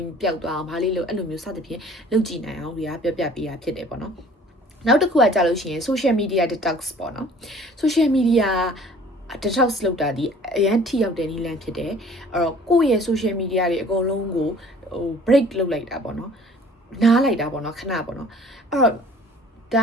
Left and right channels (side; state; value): both; normal; correlation 0.51